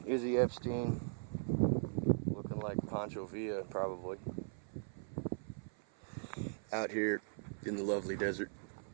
Izzy Epstein, looking like Pancho Villa probably, out here in the lovely desert,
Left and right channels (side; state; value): left; silent; 51 dB below the other